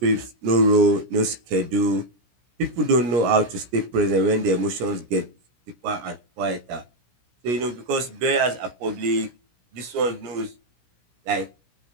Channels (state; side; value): late; left; 17 ms